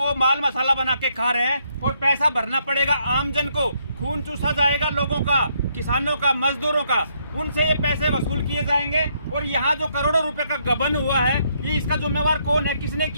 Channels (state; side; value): inverted; both; correlation -0.73